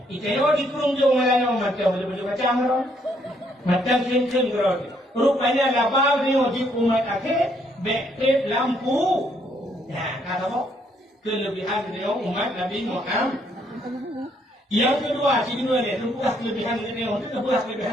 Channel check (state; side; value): normal; both; correlation 0.70